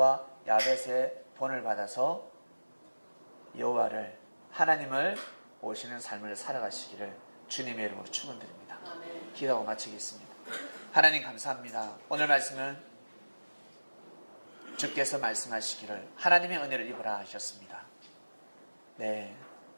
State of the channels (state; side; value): inverted; both; correlation -1.00